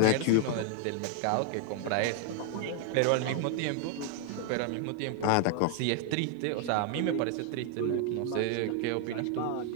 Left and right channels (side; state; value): both; different; correlation 0.00